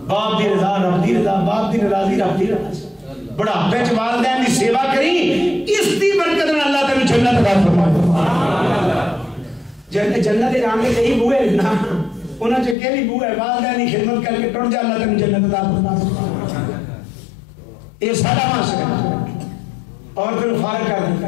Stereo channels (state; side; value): drops out; right; at 12.8 s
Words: باپ دی رضا رب دی رضا باپ دی ناراضی رب دی رضا بڑھاپے چ والدین دی سیوا کری اس دی برکت نال اللہ تینوں جنت عطا فرمائے جنت دے رام کے کئی بوئے نا انہاں چ کیڑی بو ہے والدین دی خدمت کر کے ٹر جا اللہ تینوں جنت عطا فرمائے یہ سارا معاشرہ اور پھر فارغ کر